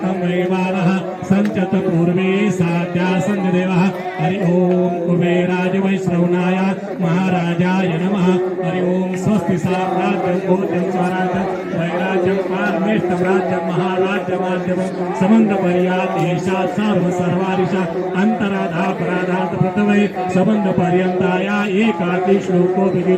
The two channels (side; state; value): both; identical; correlation 1.00